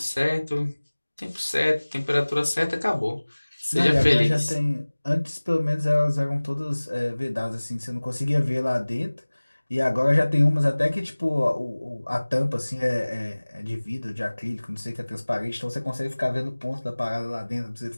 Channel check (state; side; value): inverted; both; correlation -1.00